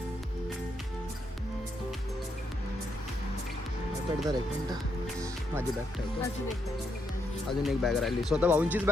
आयपॅड धरा एक मिनटं. माझी बॅग ठेवतो. अजून एक बॅग राहिली. स्वतः भाऊंचीच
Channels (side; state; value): both; normal; correlation 0.79